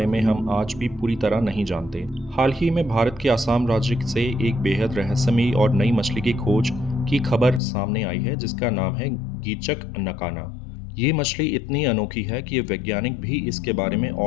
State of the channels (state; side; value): drops out; right; at 7.6 s